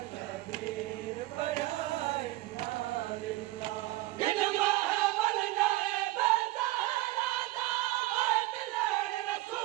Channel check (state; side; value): quieter; left; 18.2 dB